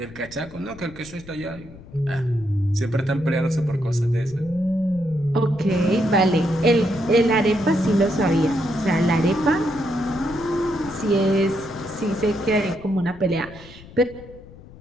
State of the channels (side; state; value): left; noise; rumble, 19 dB below the sound